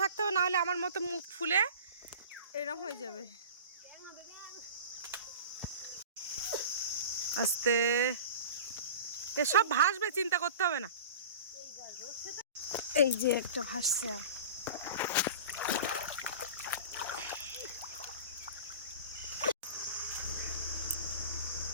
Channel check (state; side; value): inverted; both; correlation -0.37